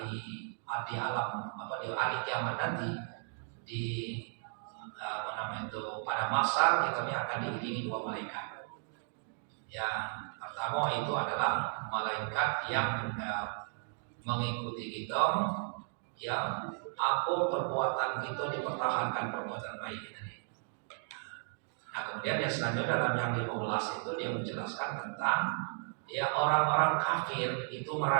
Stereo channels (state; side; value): silent; left; 55 dB below the other